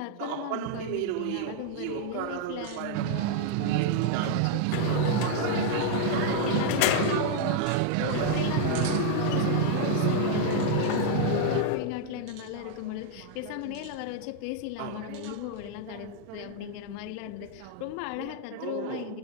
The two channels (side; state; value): both; different; correlation 0.00